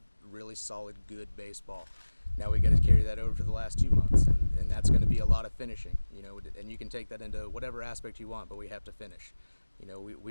really solid, good baseball. Now we got to carry that over for the last 2 months, and that's going to be a lot of finishing. And you can take that into whatever aspect you want, but we have to finish.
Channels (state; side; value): inverted; both; correlation -1.00